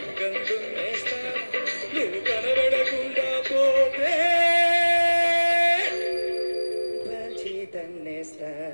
దున్నేస్తా నువ్వు కనబడకుండా పోతే కాల్చి తన్నేస్తా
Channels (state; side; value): inverted; both; correlation -1.00